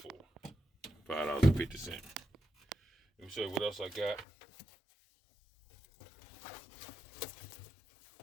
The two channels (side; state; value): right; drops out; at 4.2 s